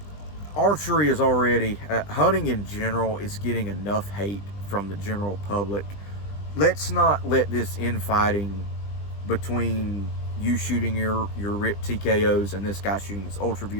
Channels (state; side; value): late; right; 20 ms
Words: Archery is already, hunting in general is getting enough hate from the general public. Let's not let this infighting between you shooting your RIP TKOs and this guy shooting his